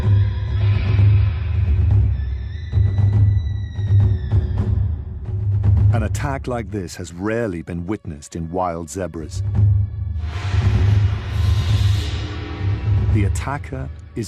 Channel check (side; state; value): both; identical; correlation 1.00